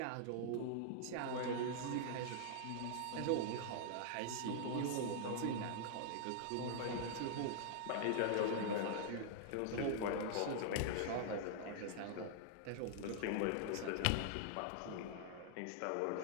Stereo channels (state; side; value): different; both; correlation -0.01